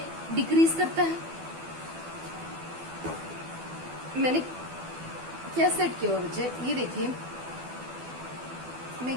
डिक्रीज करता है, मैंने क्या सेट किया हुआ बच्चे, ये देखिए, मैं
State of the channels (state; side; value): late; left; 12 ms